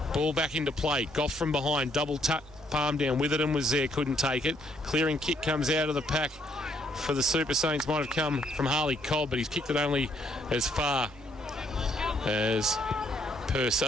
Ball back into play. Goff from behind. Double tap. Palm down. Witherden was there, couldn't take it. Clearing kick comes out of the pack for the Super Saints. Might have come from Harley Cobb, but he's kicked it only as far as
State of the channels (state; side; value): normal; both; correlation 0.70